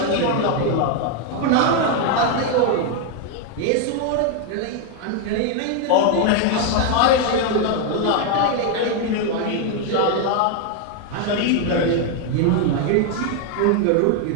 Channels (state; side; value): different; both; correlation 0.01